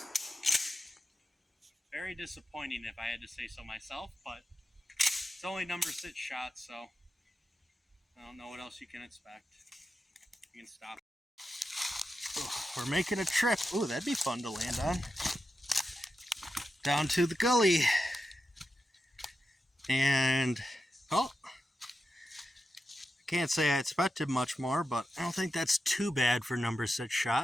Very disappointing if I had to say so myself, but it's only number 6 shots, so I don't know what else you can expect. You can stop. We're making a trip. Ooh, that'd be fun to land on. Down to the gully. And, oh, I can't say I expected much more, but I don't think that's too bad for number 6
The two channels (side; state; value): both; normal; correlation 0.89